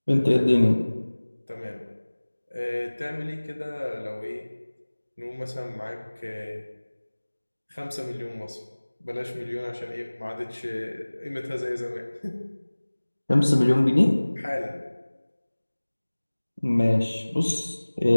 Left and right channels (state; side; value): inverted; both; correlation -1.00